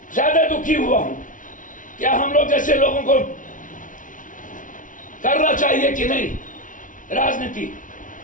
ज्यादा दुखी हुआ हूं। क्या हम लोग जैसे लोगों को करना चाहिए कि नहीं राजनीति?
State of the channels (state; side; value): late; right; 0.38 ms